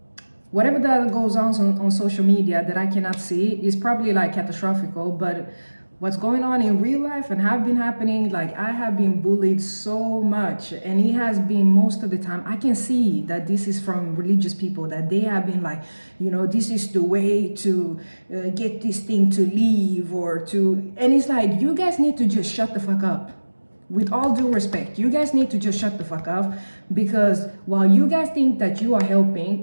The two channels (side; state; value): both; inverted; correlation -1.00